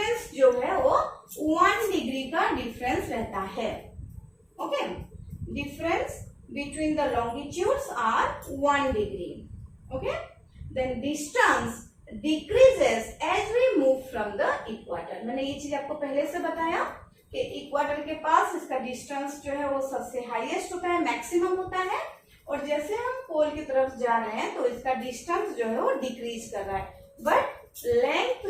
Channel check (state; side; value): identical; both; correlation 1.00